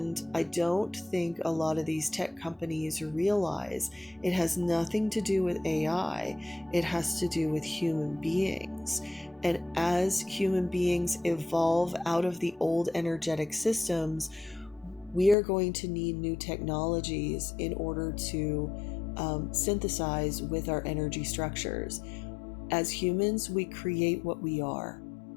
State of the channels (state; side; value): drops out; right; at 15.4 s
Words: I don't think a lot of these tech companies realize it has nothing to do with AI. It has to do with human beings. And as human beings evolve out of the old energetic systems, we are going to need new technologies in order to synthesize with our energy structures. As humans, we create what we are.